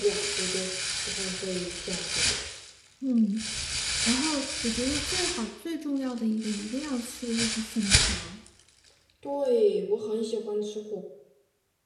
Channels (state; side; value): identical; both; correlation 1.00